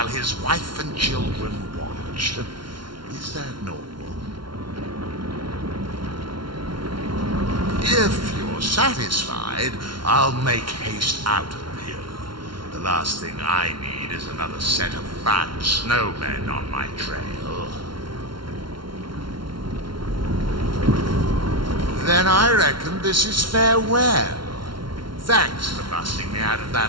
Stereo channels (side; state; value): left; late; 0.73 ms